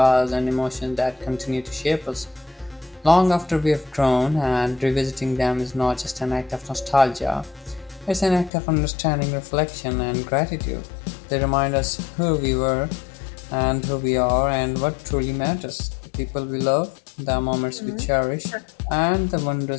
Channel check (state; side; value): drops out; right; at 8.5 s